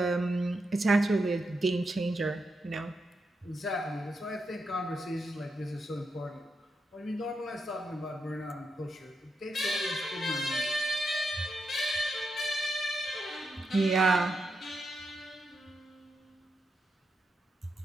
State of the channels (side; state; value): both; normal; correlation 0.84